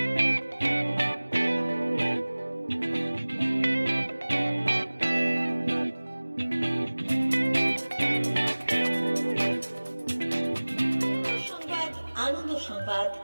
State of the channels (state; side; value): inverted; both; correlation -1.00